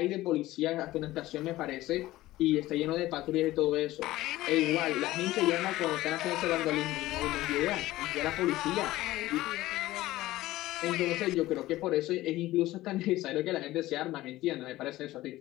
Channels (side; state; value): right; quieter; 16.7 dB